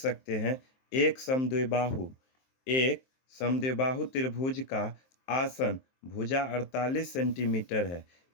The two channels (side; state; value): right; late; 23 ms